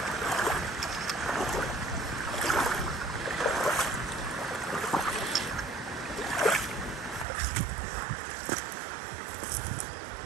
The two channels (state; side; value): drops out; left; at 7.2 s